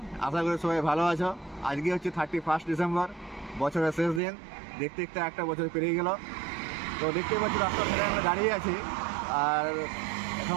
আশা করি সবাই ভালো আছো। আজকে হচ্ছে 31 ডিসেম্বর, বছরের শেষ দিন। দেখতে দেখতে একটা বছর পেরিয়ে গেল। তো দেখতেই পাচ্ছি রাস্তার ধারে আমরা দাঁড়িয়ে আছি, আর এখন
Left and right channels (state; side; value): drops out; left; at 4.2 s